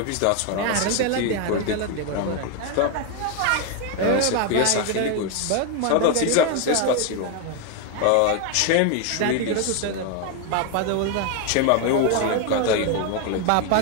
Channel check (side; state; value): both; different; correlation 0.01